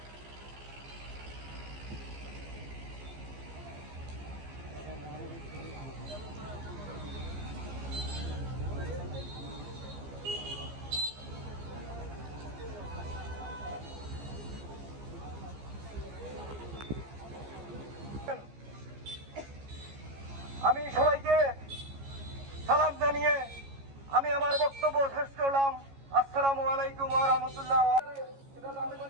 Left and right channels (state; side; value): late; left; 15 ms